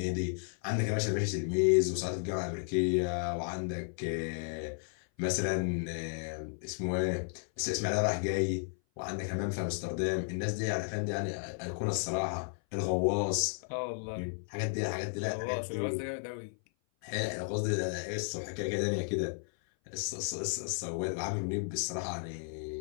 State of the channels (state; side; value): silent; right; 55 dB below the other